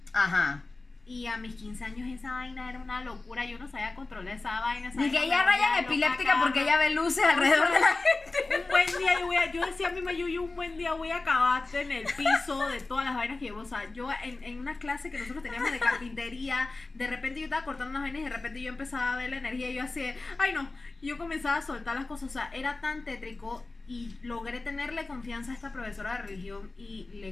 Ajá. Y a mis 15 años esa vaina era una locura. Yo no sabía controlar esa vaina. Ni que ella raya epiléptica porque ella ve luces alrededor de la gente. Un buen día yo decía a mi mamá, yo un buen día voy a acabarte en el piso de todas las vainas que llevo. O sea, yo en una clase que nosotros teníamos de carpintería, de repente yo estaba cortando unas vainas y de repente yo empezaba a ver la energía y yo así, ay no, yo comenzaba a soltar las cosas. O sea, era tan tétrico, y logré tenerle confianza a esta profesora de religión y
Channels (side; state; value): right; quieter; 3.4 dB